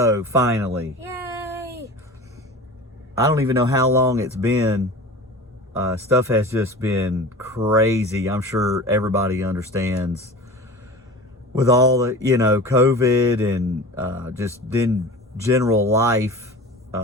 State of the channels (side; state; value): both; normal; correlation 0.36